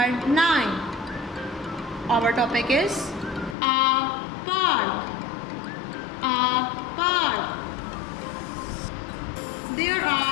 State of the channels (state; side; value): drops out; right; at 3.6 s